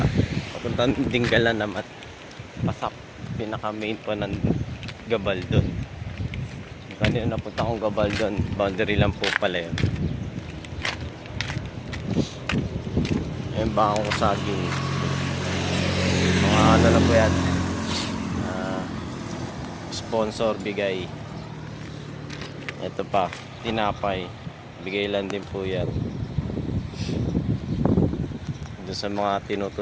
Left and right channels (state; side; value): identical; both; correlation 1.00